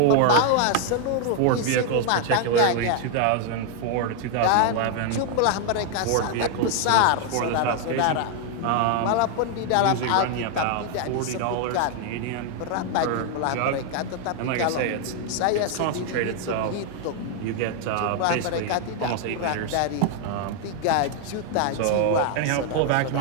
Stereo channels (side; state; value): both; different; correlation 0.00